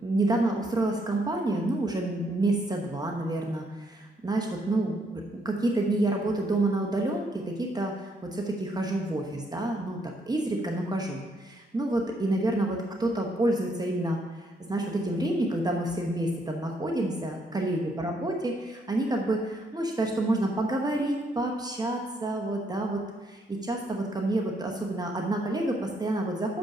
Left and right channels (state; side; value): normal; both; correlation 0.72